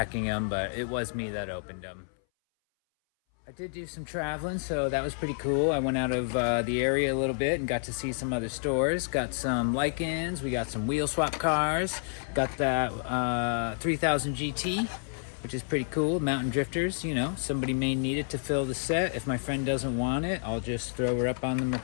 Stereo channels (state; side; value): silent; right; 58 dB below the other